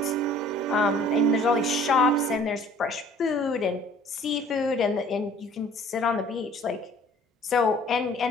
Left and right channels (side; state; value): both; normal; correlation 0.52